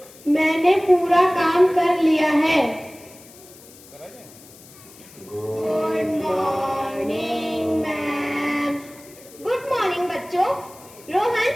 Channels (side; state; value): left; noise; hiss, 22 dB below the sound